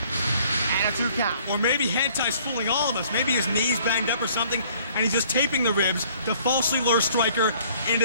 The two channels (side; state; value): both; inverted; correlation -0.58